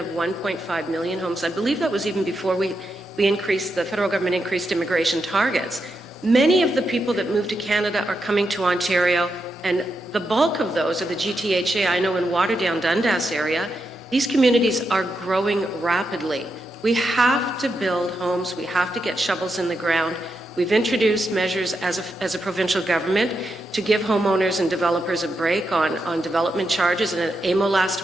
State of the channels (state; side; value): normal; both; correlation 0.85